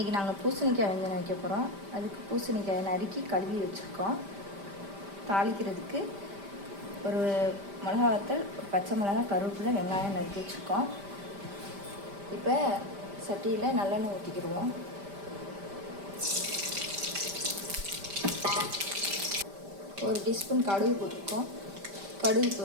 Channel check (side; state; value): left; late; 5.1 ms